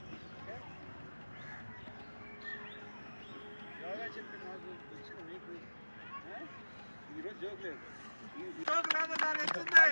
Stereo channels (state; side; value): inverted; both; correlation -1.00